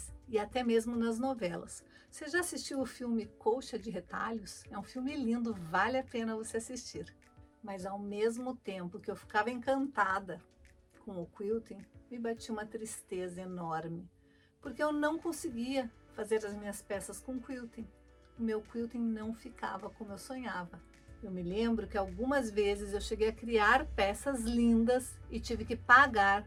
e até mesmo nas novelas. Você já assistiu o filme Colcha de Retalhos? É um filme lindo, vale a pena você assistir. Mas ao mesmo tempo que eu ficava encantada com o quilting, me batia uma tristeza enorme, porque eu não conseguia fazer as minhas peças com quilting. O meu quilting não ficava como eu sonhava. Eu me lembro que algumas vezes eu cheguei a criar peças lindas e tive que pagar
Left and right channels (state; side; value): identical; both; correlation 1.00